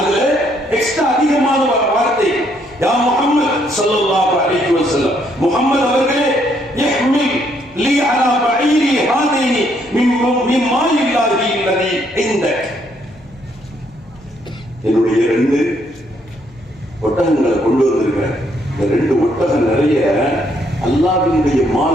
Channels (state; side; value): noise; left; hum, 28 dB below the sound